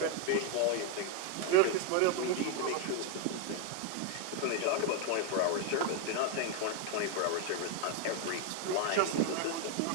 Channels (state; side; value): different; both; correlation 0.01